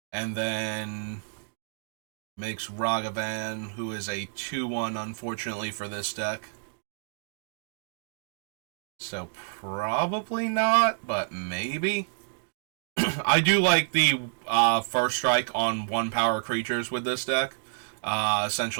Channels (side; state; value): left; silent; digital silence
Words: and then makes Ragavan, who is a 2/1, unfortunately, for this deck. So probably not, but maybe. I do like the First Strike on 1 power creatures with this deck,